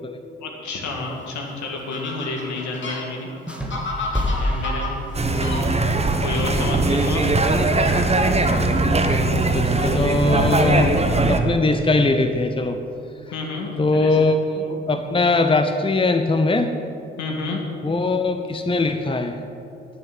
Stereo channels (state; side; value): normal; both; correlation 0.53